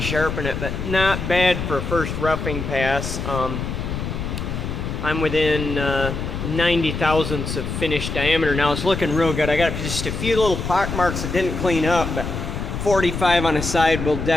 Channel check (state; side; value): noise; left; rumble, 4 dB below the sound